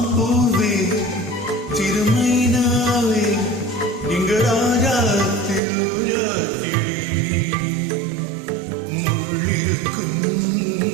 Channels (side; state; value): left; drops out; at 5.6 s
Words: திருமைனாவே இங்கு ராஜா திருராத்திரி, முள்ளிருக்கும்